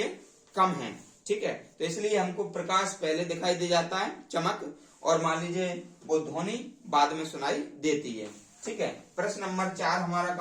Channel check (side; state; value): both; identical; correlation 1.00